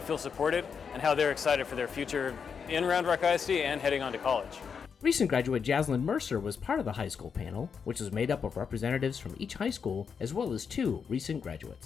feel supported and how they're excited for their future in Round Rock ISD and heading on to college. Recent graduate Jaslyn Mercer was part of the high school panel, which was made up of representatives from each high school as well as 2 recent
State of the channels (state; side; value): quieter; right; 6.4 dB